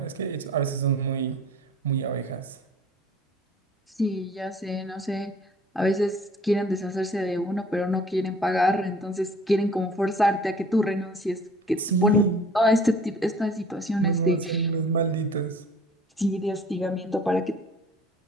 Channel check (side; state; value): both; normal; correlation 0.50